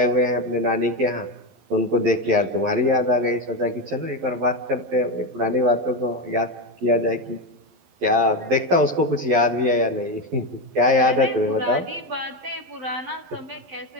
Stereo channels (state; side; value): late; left; 12 ms